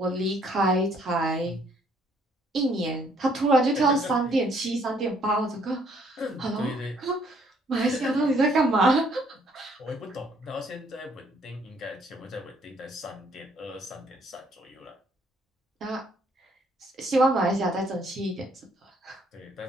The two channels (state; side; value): normal; both; correlation 0.65